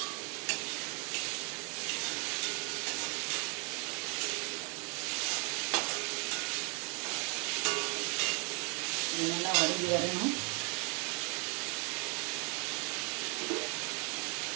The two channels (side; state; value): left; quieter; 34.2 dB